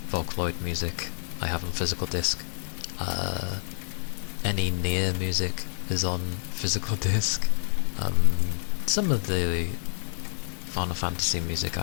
Vocaloid music I have on physical disc. Any near music is on physical disc. Some of the Final Fantasy music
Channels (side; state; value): right; silent; 59 dB below the other